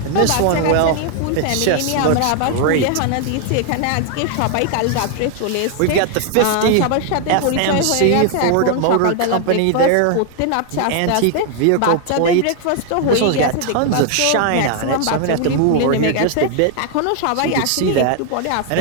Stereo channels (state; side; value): different; both; correlation 0.00